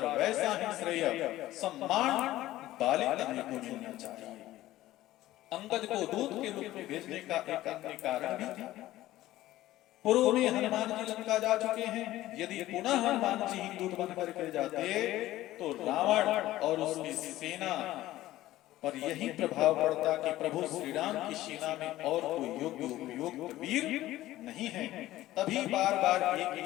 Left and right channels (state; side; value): quieter; right; 15.5 dB